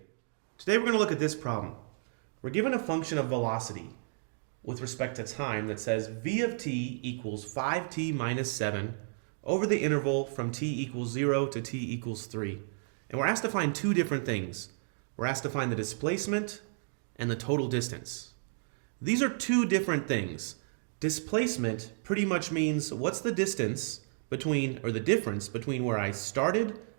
Today we're going to look at this problem. We're given a function of velocity with respect to time that says v of t equals 5t minus 7 over the interval from t equals 0 to t equals 3. And we're asked to find two different things. We're asked to find the displacement and the total distance. These are two different things. Displacement pretty much means what's the distance between, or the difference between where I started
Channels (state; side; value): silent; left; digital silence